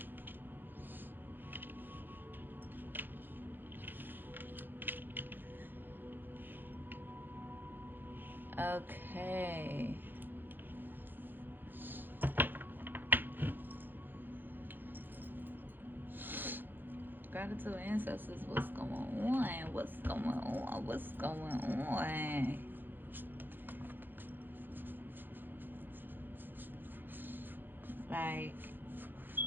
Okay. Gratitude ancestors, what's going on? What's going on? What's going on? Like,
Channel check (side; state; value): left; late; 0.093 ms